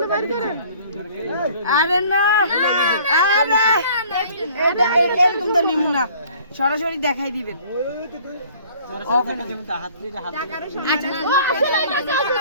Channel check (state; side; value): inverted; both; correlation -0.54